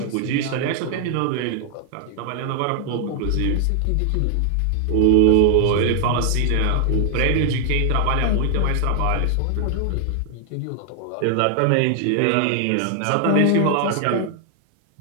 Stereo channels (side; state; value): both; different; correlation 0.00